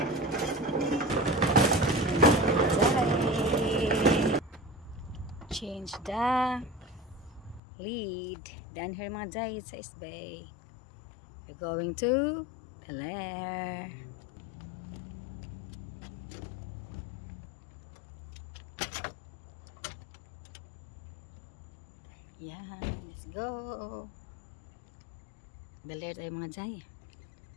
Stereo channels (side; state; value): right; drops out; at 7.6 s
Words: Change the lead. Down here mga jay sa East Bay. We're going to the lair. Yan, let's go. The lair tayo mga jay.